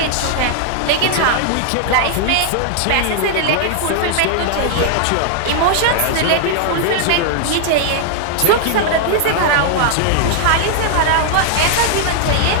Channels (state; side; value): different; both; correlation -0.01